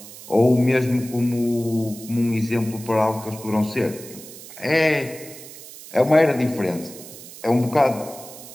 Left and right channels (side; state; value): right; noise; hiss, 16 dB below the sound